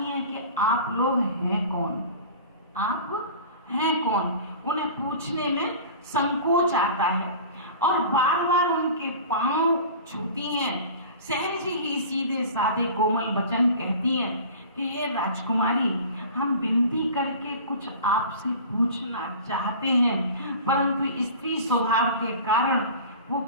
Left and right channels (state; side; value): inverted; both; correlation -0.39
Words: हैं कि आप लोग हैं कौन, आप हैं कौन। उन्हें पूछने में संकोच आता है और बार बार उनके पांव छूती हैं, सहज ही सीधे साधे कोमल वचन कहती हैं कि हे राजकुमारी, हम विनती करके कुछ आपसे पूछना चाहते हैं, परंतु स्त्री स्वभाव के कारण वो